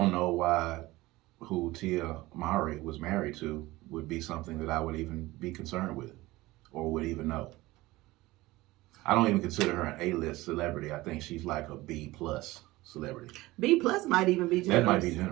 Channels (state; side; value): quieter; left; 19.2 dB